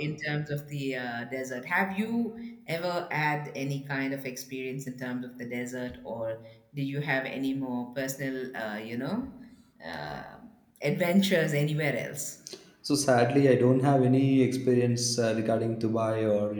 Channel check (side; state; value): both; identical; correlation 1.00